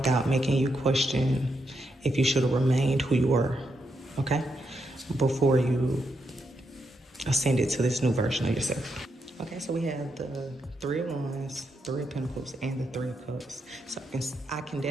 making you question if you should have remained who you were, okay? Before you ascended to this new version of yourself. Okay, so we have the 3 of Wands, 3 of Pentacles, and the 3 of Cups. So I can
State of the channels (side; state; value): both; normal; correlation 0.82